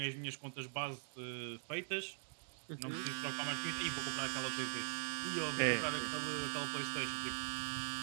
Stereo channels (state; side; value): silent; left; digital silence